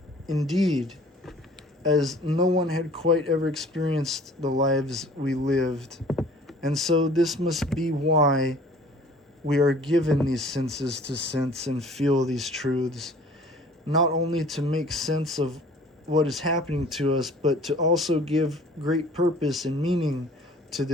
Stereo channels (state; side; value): normal; both; correlation 0.50